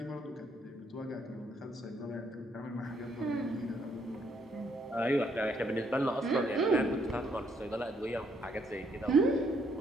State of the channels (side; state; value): both; normal; correlation 0.71